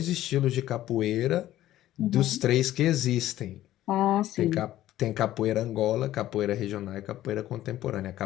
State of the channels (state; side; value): quieter; right; 13.8 dB